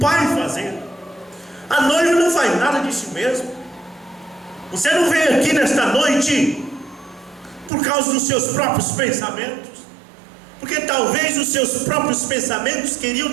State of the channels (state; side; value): drops out; left; at 7.7 s